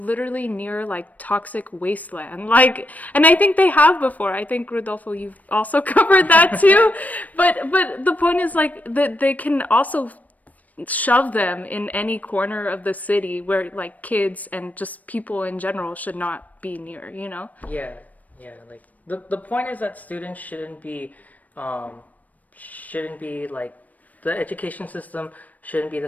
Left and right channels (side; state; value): right; late; 0.075 ms